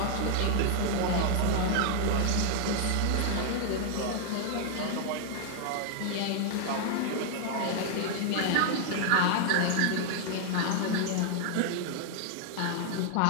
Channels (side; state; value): both; different; correlation 0.00